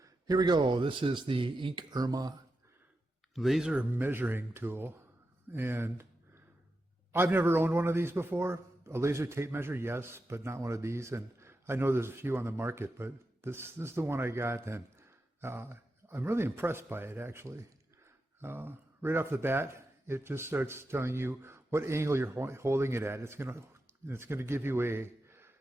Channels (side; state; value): both; normal; correlation 0.89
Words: Here we go. This is the Ink Irma laser measuring tool. And I've never owned one of these before. A laser tape measure, yes, but not one of these. And I know there's a few on the market, but this is the one I got, and I'm really impressed by it, actually. Right off the bat, it just starts telling you what angle you're holding it at. It's gonna give you